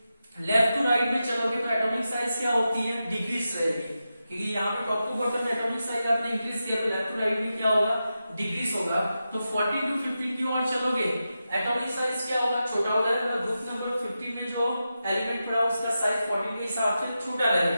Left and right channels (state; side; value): inverted; both; correlation -0.90